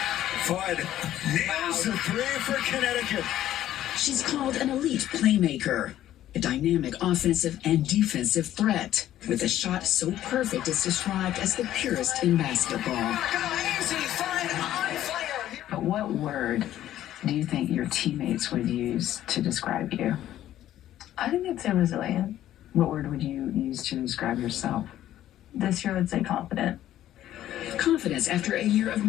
Fudd nails the three for Connecticut. She's called an elite playmaker, a dynamic offensive and defensive threat, with a shot so perfect it's described as the purest in basketball. But what word do you think your teammates would use to describe you? I think I'd say resilient. What word would you use to describe yourself? This year, I'd say confident. Confidence after a year of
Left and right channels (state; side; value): quieter; right; 12.7 dB